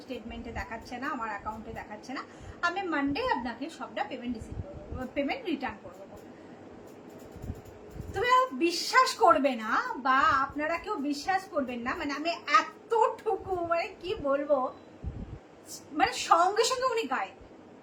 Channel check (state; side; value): identical; both; correlation 1.00